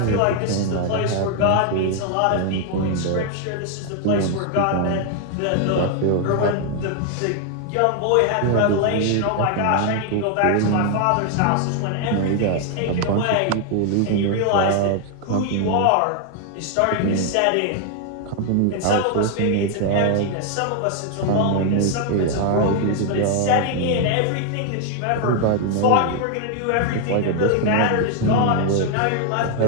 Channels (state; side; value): different; both; correlation 0.00